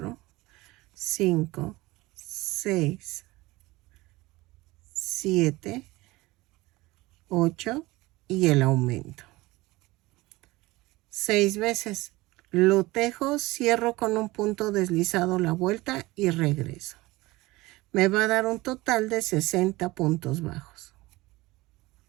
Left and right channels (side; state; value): left; quieter; 20.4 dB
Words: 5, 6, 7, 8 y el aumento. 6 veces. Lo tejo, cierro con un punto deslizado la vuelta y regreso. Me va a dar un total de 60 puntos bajos.